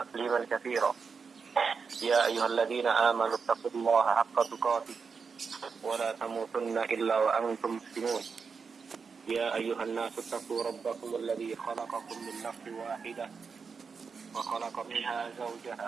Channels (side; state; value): left; quieter; 5.4 dB